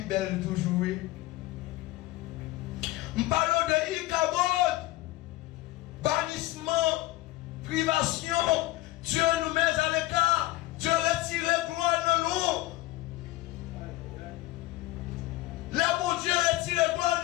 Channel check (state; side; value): quieter; right; 18.0 dB